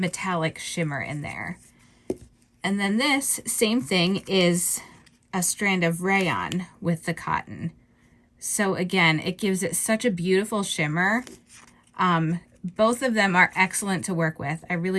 shimmer in there. And then this same thing is a strand of rayon with the cotton. So again, it gives it such a beautiful shimmer. Both of them are excellent to work with. I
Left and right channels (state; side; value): identical; both; correlation 1.00